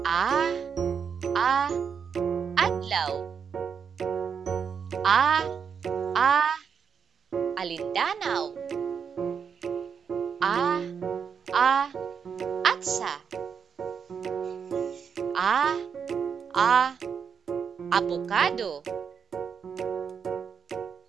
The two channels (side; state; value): left; quieter; 6.8 dB